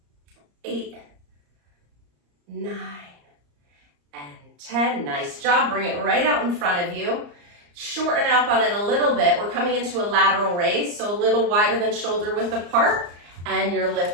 8, 9, and 10. Nice job. Bring it right out in front of you. Shorten up on it a little bit. We're coming into a lateral raise, so a little wider than shoulder width apart, and you're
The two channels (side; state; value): left; late; 34 ms